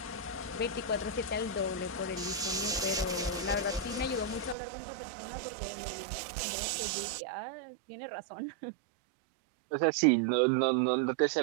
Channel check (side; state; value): left; drops out; at 4.5 s